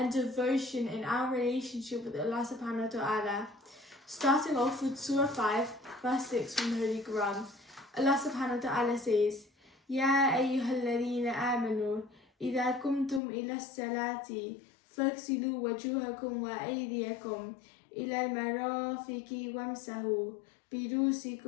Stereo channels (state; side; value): drops out; right; at 13.2 s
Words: devotion in our relationship with Allah subhanahu wa ta'ala. Starting off with Surah 5, verse 6 from the Holy Quran, Allah subhanahu wa ta'ala says, يا أيها الذين آمنوا إذا قمتم إلى الصلاة فاغسلوا وجوهكم وأيديكم إلى المرافق وامسحوا